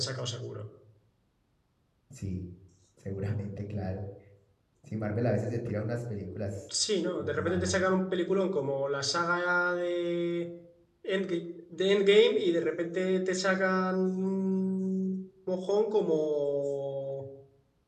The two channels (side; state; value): both; identical; correlation 1.00